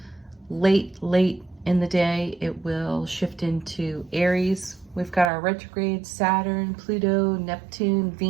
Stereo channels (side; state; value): left; drops out; at 5.3 s